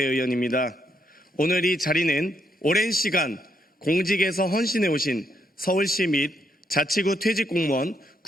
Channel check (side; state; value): both; normal; correlation 0.76